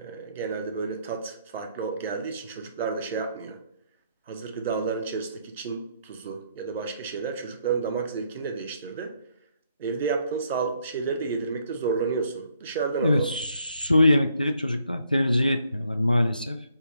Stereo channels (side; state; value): both; inverted; correlation -0.71